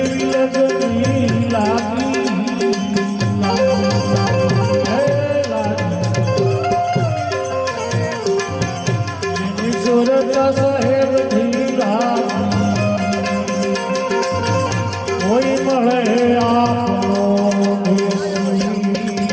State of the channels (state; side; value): identical; both; correlation 1.00